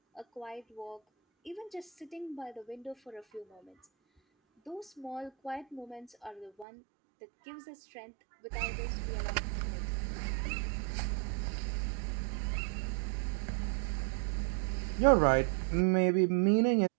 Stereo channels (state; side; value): drops out; left; at 6.7 s